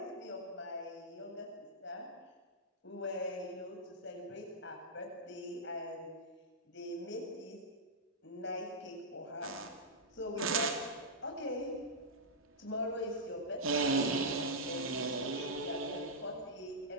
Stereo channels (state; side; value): normal; both; correlation -0.11